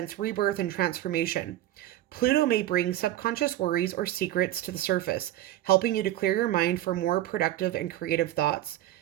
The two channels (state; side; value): quieter; left; 13.7 dB